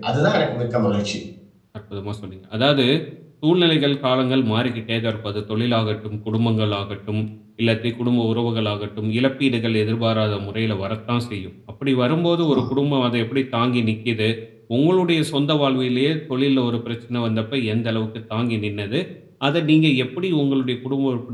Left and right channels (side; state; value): both; identical; correlation 1.00